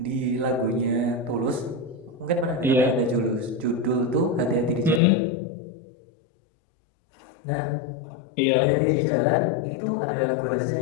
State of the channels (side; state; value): right; drops out; at 5.0 s